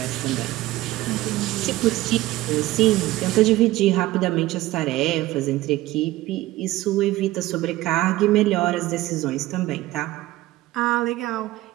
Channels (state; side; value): quieter; left; 17.0 dB